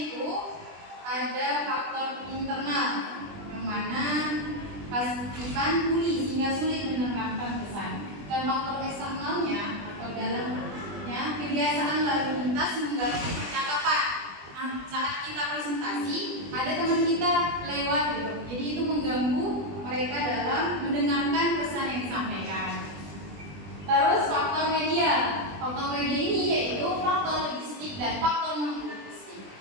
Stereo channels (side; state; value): left; late; 20 ms